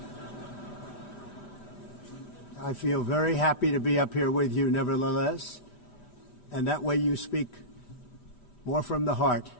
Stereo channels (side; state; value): right; late; 5.0 ms